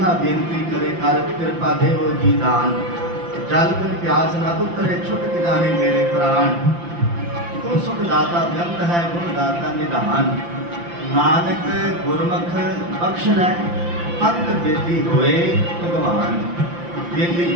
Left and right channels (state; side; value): late; left; 5.8 ms